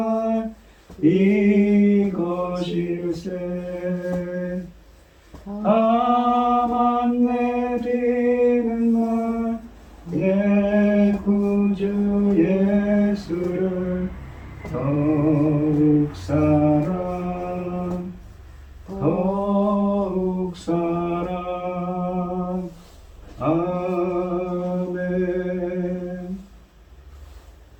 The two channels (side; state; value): both; identical; correlation 1.00